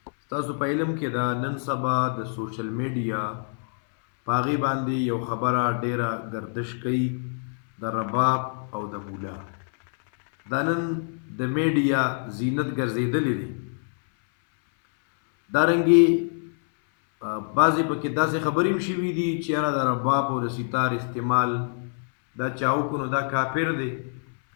تاسو په علم کې دا نن سبا د سوشل میډیا پاغي باندې یو خبره ډیره گردش کوي د رباب او د مولا. دا نن د میډیا زینت ګرځیدلې دي. دارنګي بعضې پکې داسې خبرې هم شوي دي چې یاره د رباب او د ستار استعمال دا چاو کو نو دا کافر دی،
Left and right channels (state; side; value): silent; right; 61 dB below the other